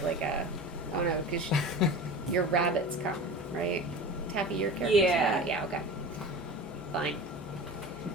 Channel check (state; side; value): normal; both; correlation 0.34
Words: no, because your rabbits come, right? Taffy, your character. Yeah. Yeah. Okay. Fine.